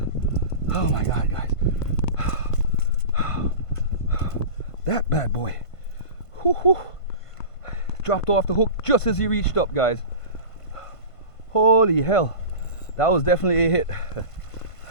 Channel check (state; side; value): late; right; 1.5 ms